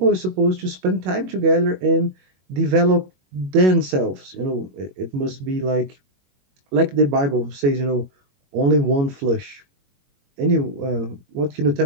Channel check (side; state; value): left; late; 21 ms